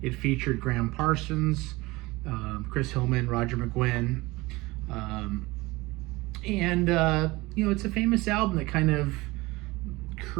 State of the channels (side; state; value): left; quieter; 21.6 dB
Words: It featured Graham Parsons, Chris Hillman, Roger McGuinn. It's a famous album that kind of